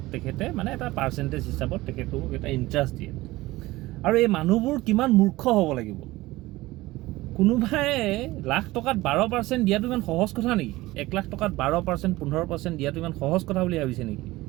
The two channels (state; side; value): quieter; left; 18.8 dB